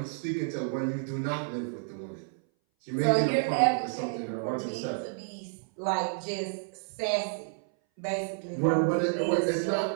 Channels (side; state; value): left; silent; 58 dB below the other